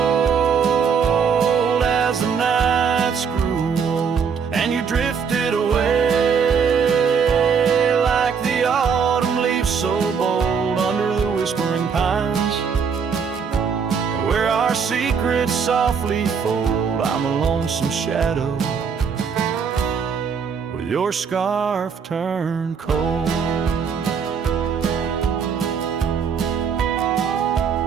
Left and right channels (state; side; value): quieter; left; 6.4 dB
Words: as the nights grew old, and you drifted away like the autumn leaves so bold under the whispering pines, where our secrets softly fold. I'm a lonesome shadow with your scarf turned cold.